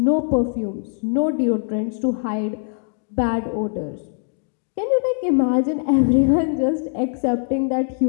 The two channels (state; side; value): silent; right; digital silence